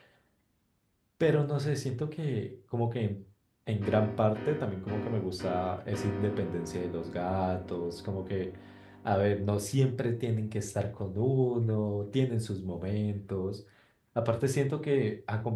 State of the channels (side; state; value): both; identical; correlation 1.00